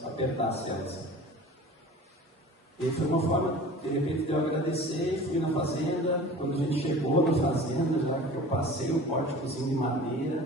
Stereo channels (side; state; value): both; normal; correlation 0.41